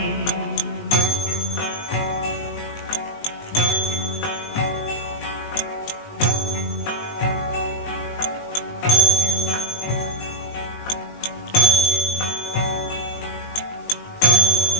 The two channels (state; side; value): late; right; 19 ms